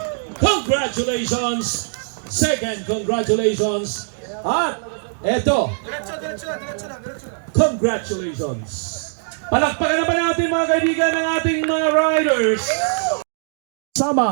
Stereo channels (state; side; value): silent; left; digital silence